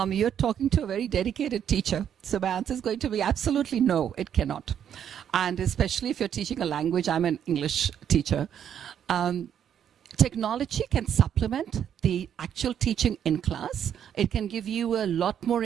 You're talking to a very dedicated teacher. So my answer is going to be absolutely no, it cannot. And especially if you're teaching a language, I'm an English teacher. Technology can supplement the actual teaching in class. It can give you a lot more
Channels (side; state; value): left; quieter; 9.2 dB